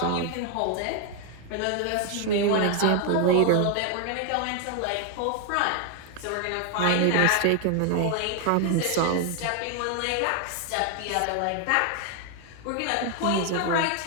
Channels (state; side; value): different; both; correlation 0.00